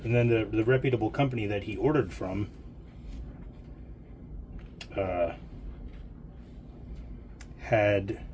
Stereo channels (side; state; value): both; identical; correlation 1.00